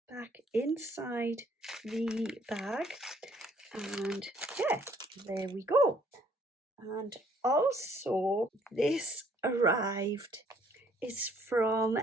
back inside the bag. And yeah, there we go. And also this arrived is from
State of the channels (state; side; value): normal; both; correlation 0.63